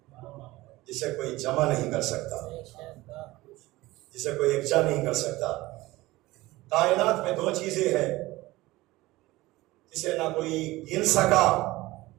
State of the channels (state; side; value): quieter; left; 18.9 dB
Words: جسے کوئی جمع نہیں کر سکتا، جسے کوئی یکجا نہیں کر سکتا. کائنات میں دو چیزیں ہیں جسے نہ کوئی گن سکا